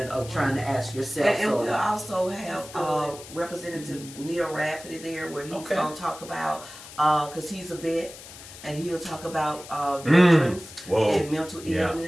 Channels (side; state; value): left; noise; hiss, 16 dB below the sound